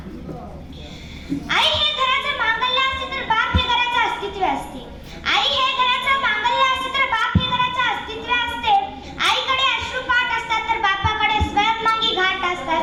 आई हे घराचं मांगल्य असते तर बाप हे घराचं अस्तित्व असते. आई हे घराचं मांगल्य असते तर बाप हे घराचं अस्तित्व असते. आईकडे अश्रुपाठ असतात तर बापाकडे स्वयंमागी घाट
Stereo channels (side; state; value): both; identical; correlation 1.00